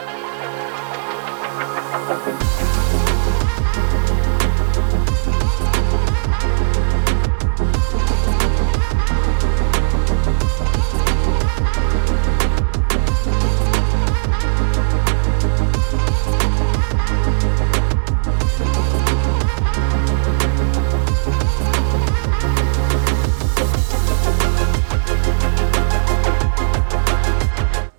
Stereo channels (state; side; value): silent; left; 63 dB below the other